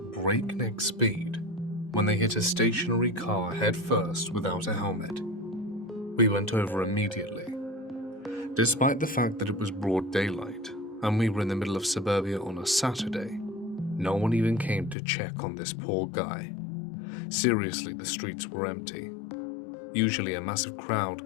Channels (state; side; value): drops out; right; at 15.0 s